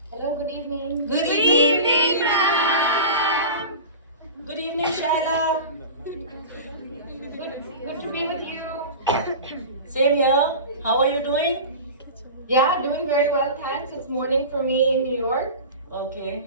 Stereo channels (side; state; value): both; inverted; correlation -0.32